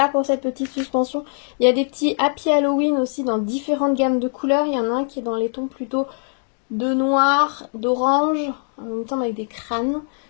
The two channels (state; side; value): silent; right; 59 dB below the other